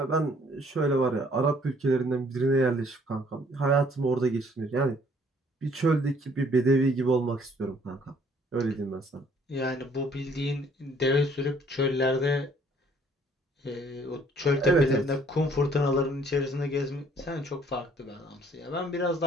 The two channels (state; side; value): normal; both; correlation 0.60